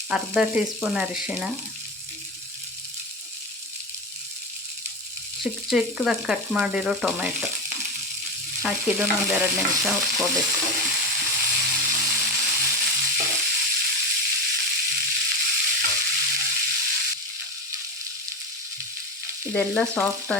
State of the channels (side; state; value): both; normal; correlation 0.19